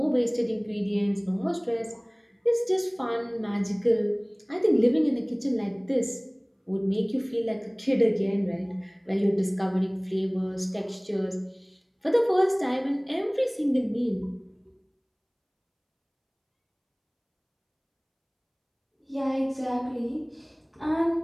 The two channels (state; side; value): identical; both; correlation 1.00